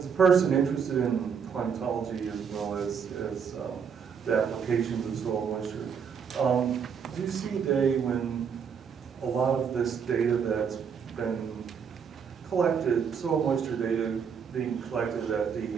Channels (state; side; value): quieter; left; 6.9 dB